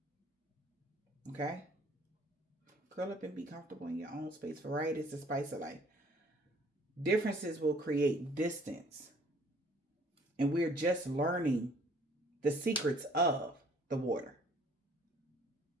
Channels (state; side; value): normal; both; correlation 0.57